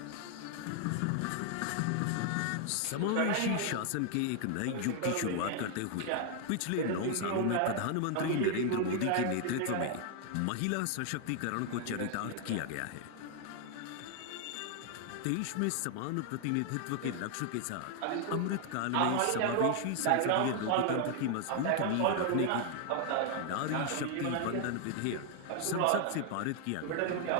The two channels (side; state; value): both; different; correlation 0.00